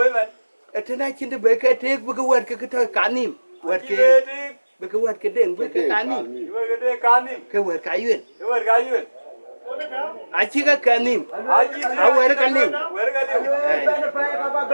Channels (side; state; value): both; inverted; correlation -1.00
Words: man. Etena chinde be ke tek bu ke wer ke to kanim. Wer ke Kide be ke wer ke den be ke kanim. di. Iwa kide kanim. Ke wer ka yu. Iwa ga yu. A chi ka kanim. Aji A wer ka nim. wer ga liu. Ba na pa ba